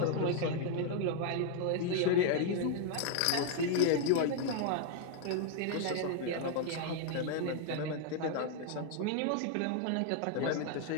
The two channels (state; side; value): different; both; correlation 0.00